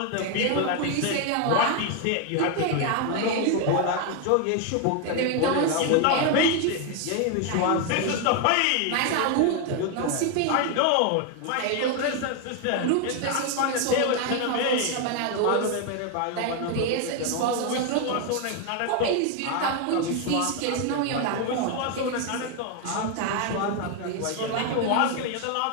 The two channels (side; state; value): both; different; correlation 0.01